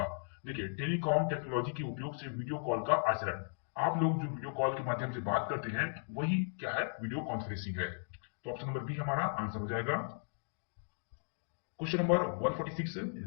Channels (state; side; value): silent; right; digital silence